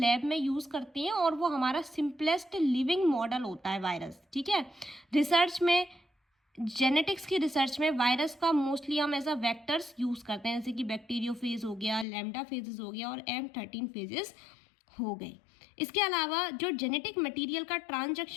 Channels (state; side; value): drops out; right; at 12.1 s